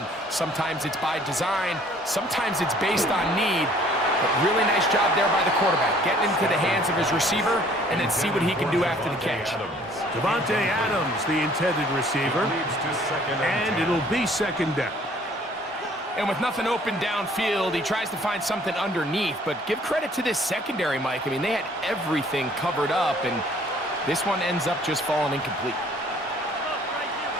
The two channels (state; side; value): normal; both; correlation 0.57